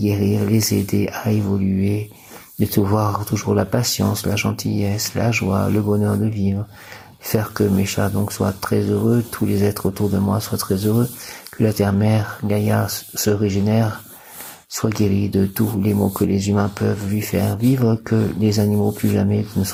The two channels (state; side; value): identical; both; correlation 1.00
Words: les aider à évoluer, de pouvoir toujours la patience, la gentillesse, la joie, le bonheur de vivre, faire que mes chats donc soient très heureux, tous les êtres autour de moi soient très heureux, que la terre-mère, Gaïa, se régénère, soit guérie de tous les maux que les humains peuvent lui faire vivre, que les animaux plus jamais ne